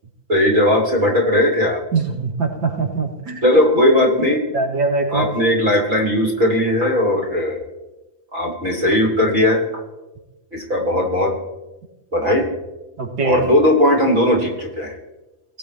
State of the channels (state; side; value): late; left; 5.9 ms